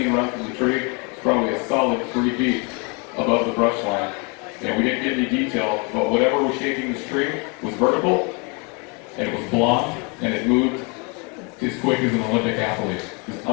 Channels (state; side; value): quieter; right; 31.6 dB